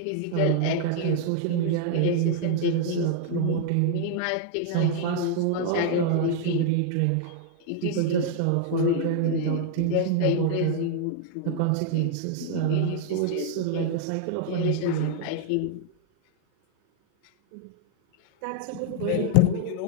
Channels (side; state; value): both; different; correlation 0.00